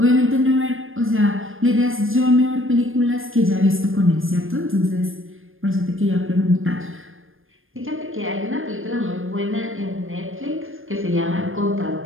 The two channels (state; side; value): late; left; 0.59 ms